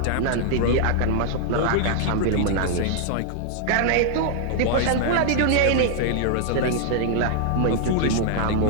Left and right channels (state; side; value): different; both; correlation -0.01